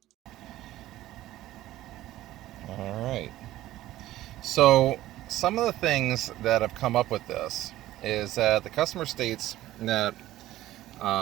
All right. So some of the things that have come up with this is that the customer states that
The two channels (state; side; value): quieter; left; 15.0 dB